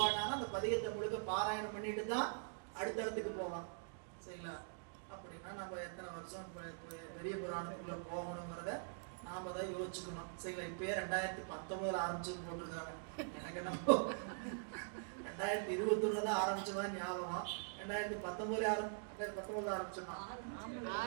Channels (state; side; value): silent; left; digital silence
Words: அந்த பதிகத்தை முழுக்க பாராயணம் பண்ணிட்டு தான் அடுத்த இடத்துக்கு போவான். சரிங்களா? அப்படின்னா நம்ம எத்தனை வருஷம் பெரிய புராணத்துக்குள்ள போகணுங்கிறத நாம தான் யோசிச்சுக்கணும். சரிங்களா? இப்பயே 2019 ஆரம்பிச்சுன்னு போட்டிருக்காங்க. எனக்கு என்ன 2021 தான் ஆரம்பிச்சதான் ஞாபகம். 2019 ஆரம்பிச்சோமா?